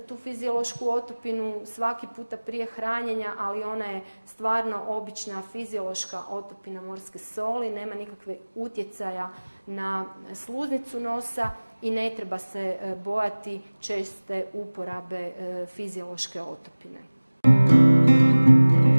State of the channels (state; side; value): inverted; both; correlation -1.00